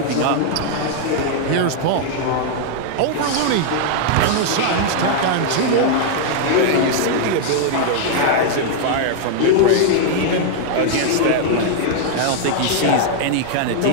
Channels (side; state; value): both; different; correlation -0.01